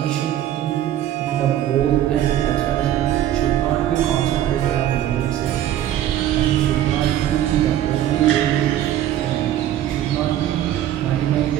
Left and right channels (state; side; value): quieter; left; 12.0 dB